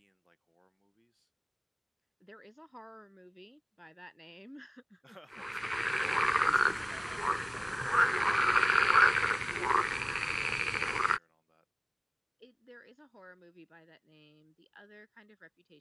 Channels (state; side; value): identical; both; correlation 1.00